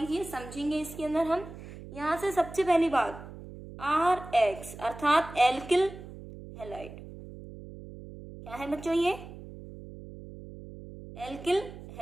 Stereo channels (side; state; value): right; noise; hum, 14 dB below the sound